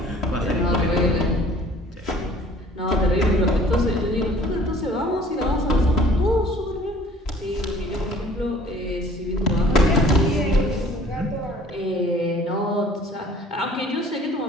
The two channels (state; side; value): normal; both; correlation 0.52